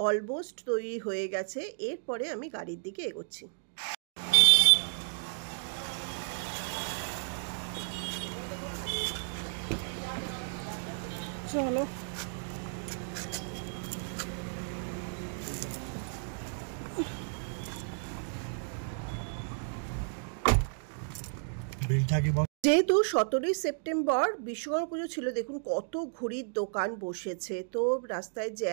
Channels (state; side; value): silent; left; digital silence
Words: অলমোস্ট তৈরি হয়ে গেছে। এরপরে আমি গাড়ির দিকে এগোচ্ছি। চলো যেহেতু 17ই সেপ্টেম্বর বিশ্বকর্মা পুজো ছিল, দেখুন কত ঘুড়ির দোকান বসেছে, তো রাস্তায়